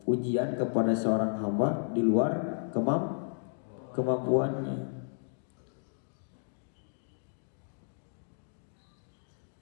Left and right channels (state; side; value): silent; right; digital silence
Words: ujian kepada seorang hamba di luar kemampuannya.